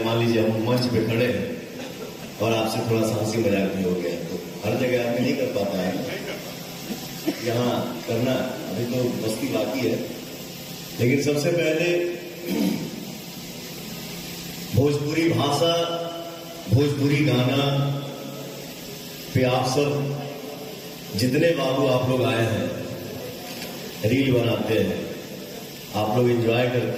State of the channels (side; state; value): both; identical; correlation 1.00